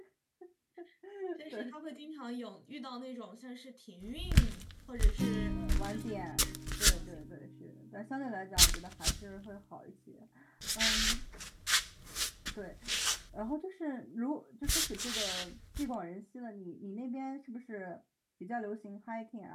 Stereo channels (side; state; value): both; identical; correlation 1.00